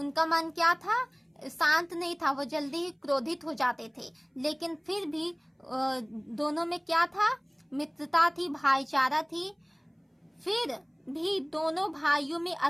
मन क्या था? शांत नहीं था, वो जल्दी ही क्रोधित हो जाते थे। लेकिन फिर भी दोनों में क्या था? मित्रता थी, भाईचारा थी। फिर भी दोनों भाइयों में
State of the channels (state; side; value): identical; both; correlation 1.00